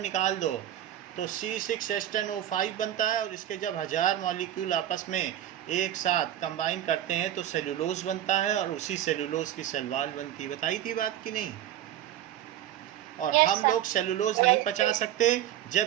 दो तो C6H10O5 बनता है. और इसके जब 1000 मॉलिक्यूल आपस में एक साथ कंबाइन करते हैं तो सेलुलोज बनता है. और उसी सेलुलोज की सेल वॉल बनती है. बताई थी बात की नहीं? और Yes, हम sir. लोग सेलुलोज नहीं पचा सकते,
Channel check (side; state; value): left; quieter; 12.0 dB